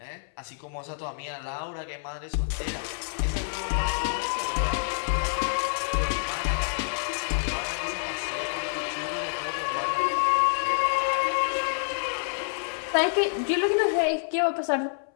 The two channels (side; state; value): right; silent; 60 dB below the other